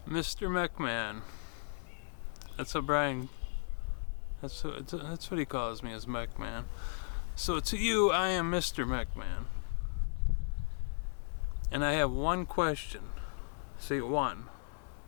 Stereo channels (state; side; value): silent; right; digital silence